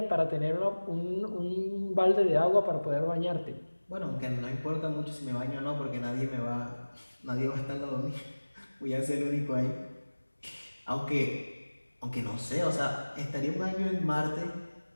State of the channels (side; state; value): both; inverted; correlation -1.00